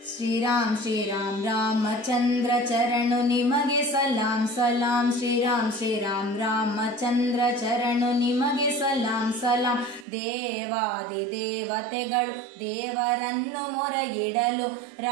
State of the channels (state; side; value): drops out; left; at 10.1 s